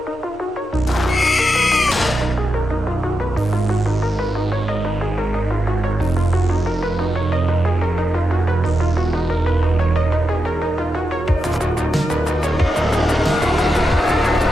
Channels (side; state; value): both; normal; correlation 0.87